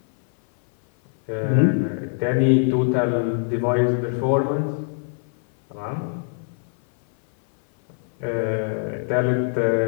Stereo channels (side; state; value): right; silent; 57 dB below the other